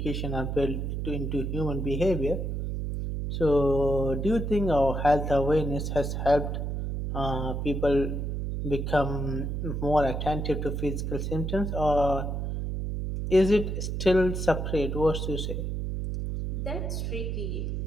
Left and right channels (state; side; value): noise; right; hum, 2 dB below the sound